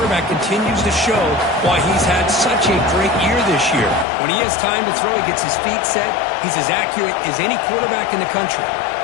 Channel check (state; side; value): drops out; right; at 4.0 s